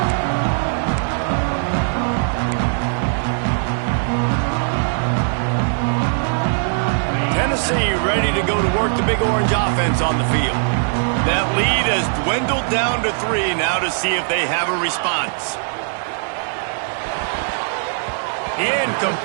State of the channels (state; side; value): silent; left; 66 dB below the other